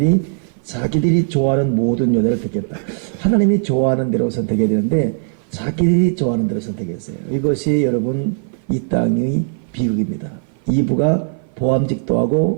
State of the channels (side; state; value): left; silent; 56 dB below the other